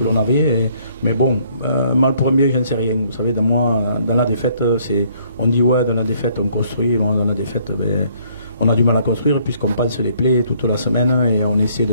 l'on avait. Mais bon, mal pour un bien, je ne sais rien. Vous savez, dans la défaite, on dit ouais, dans la défaite on construit. Bon, dans la défaite, on a du mal à construire, puisqu'on pense les plaies toute la semaine, et on essaie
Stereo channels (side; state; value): both; inverted; correlation -0.63